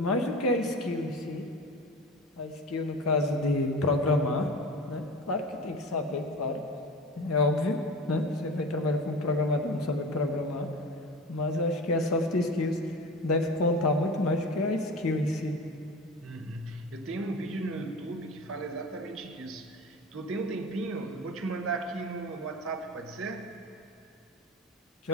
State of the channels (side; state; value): both; normal; correlation 0.33